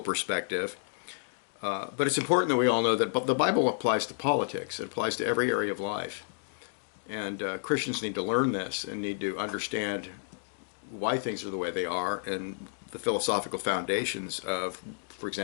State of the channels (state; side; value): silent; right; digital silence